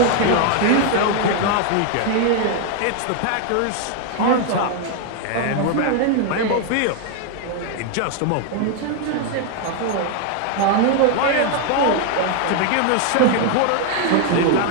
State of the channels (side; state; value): both; different; correlation 0.00